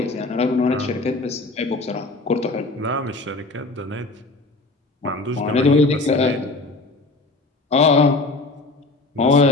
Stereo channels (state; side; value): quieter; right; 3.2 dB